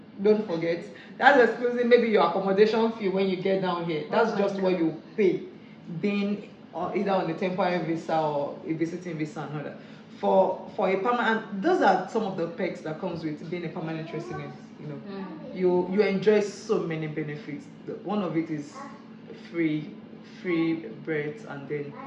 Don't forget. That's excluding maybe your accommodation fee when you get down here. That's just what you pay, being either on a temporary visa or a visiting visa and all that. For a permanent, those are some of the perks that comes with being a permanent resident. You enjoy so many benefits. One of it is free breaths, and then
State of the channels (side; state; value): both; identical; correlation 1.00